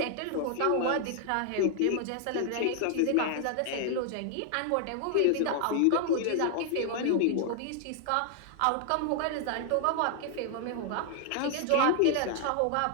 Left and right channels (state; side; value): different; both; correlation 0.00